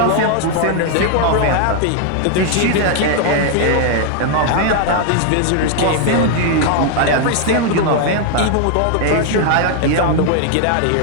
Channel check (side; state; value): both; different; correlation 0.00